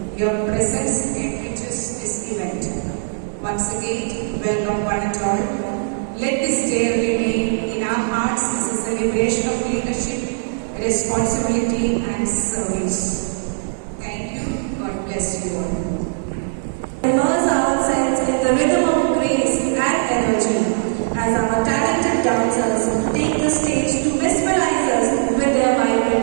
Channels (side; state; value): left; silent; digital silence